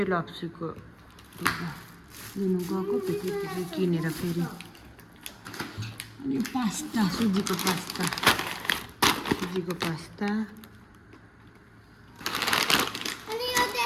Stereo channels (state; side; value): identical; both; correlation 1.00